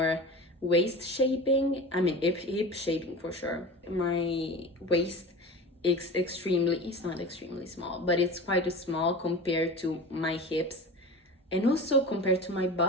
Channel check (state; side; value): normal; both; correlation 0.33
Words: waist shaping. I mean, hip shaping for sure. My waist is it's not extremely small, but it's quite small compared to my hips and also compared to my